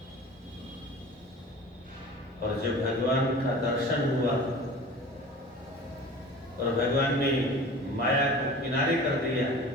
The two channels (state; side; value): normal; both; correlation 0.40